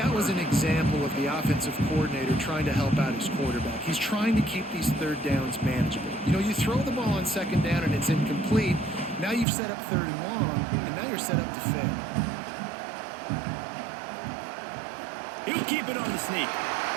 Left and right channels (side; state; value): left; drops out; at 9.5 s